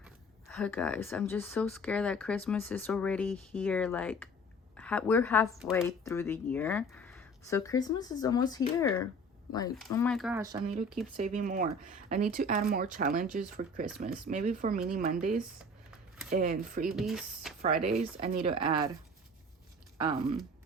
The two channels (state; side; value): normal; both; correlation 0.44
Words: Oh, guys, I'm just so scared that Christmas is already here. Like, we're halfway through the year, so Christmas is almost here. Like, oh my gosh, I need to keep saving more. I need to add more challenges for Christmas. Maybe for mini Mondays and freebies Fridays, I need to add